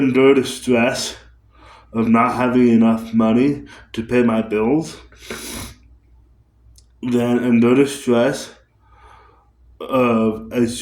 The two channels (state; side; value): identical; both; correlation 1.00